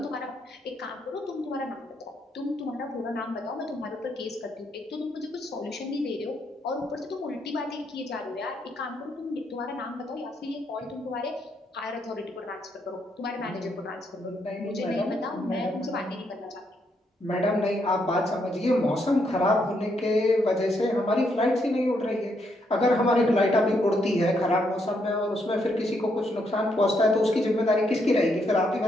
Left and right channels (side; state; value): both; normal; correlation 0.76